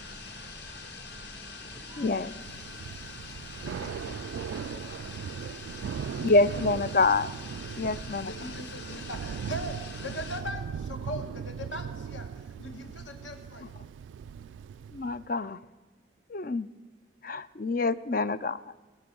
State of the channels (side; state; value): both; normal; correlation -0.08